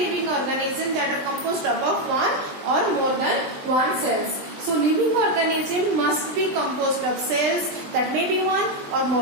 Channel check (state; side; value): late; left; 20 ms